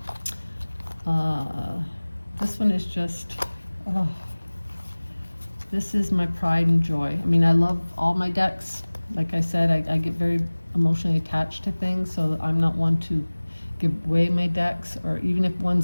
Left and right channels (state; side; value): inverted; both; correlation -1.00